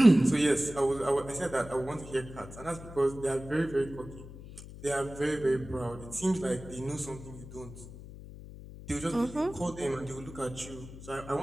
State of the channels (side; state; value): left; noise; hum, 14 dB below the sound